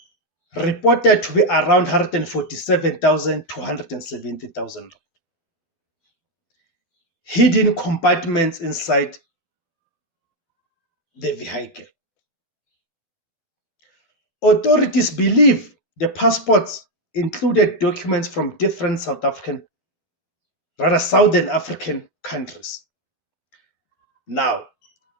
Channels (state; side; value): late; right; 12 ms